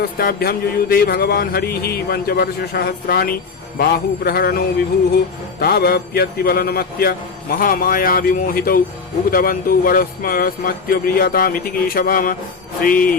युयुधे भगवान् हरिः पञ्चवर्षसहस्राणि बाहुप्रहरणो विभुः तावप्यतिबलनमत्य महामाया विमोहितौ उक्तवन्तौ वरस्मत्य प्रियतामिति केशवाम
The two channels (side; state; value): right; quieter; 4.8 dB